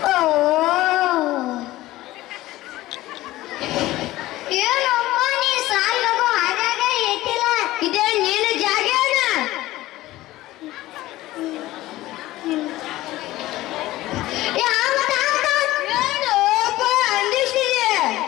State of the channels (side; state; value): right; quieter; 16.8 dB